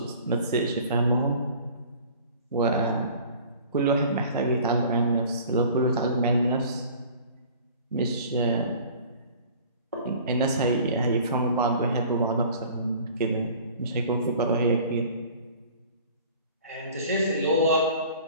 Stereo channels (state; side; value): inverted; both; correlation -0.47